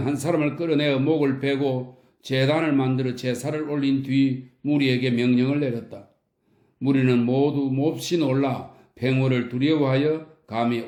한 사람을 끌어내어 목을 베고 제단을 만들어 제사를 올린 뒤 무리에게 명령을 내렸다. 무리는 모두 몹시 놀라 팽월을 두려워하여 감히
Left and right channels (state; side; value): identical; both; correlation 1.00